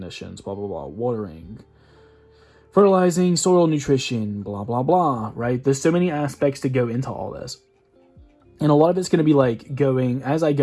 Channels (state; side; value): identical; both; correlation 1.00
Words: blah, blah, blah, watering, fertilizing, soil nutrition, blah, blah, blah, right? There's so many aspects to go into all this. And a lot of it's going to be like going, as I